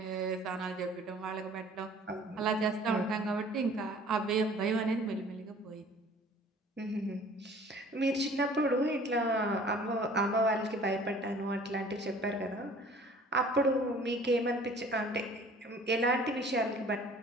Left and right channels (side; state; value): both; normal; correlation 0.50